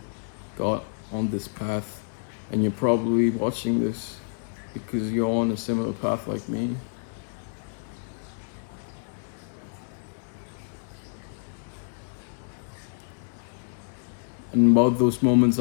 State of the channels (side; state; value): right; silent; digital silence